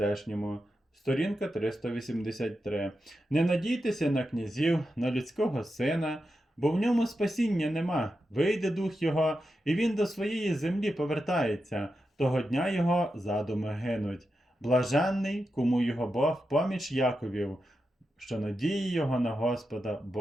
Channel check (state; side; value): normal; both; correlation 0.89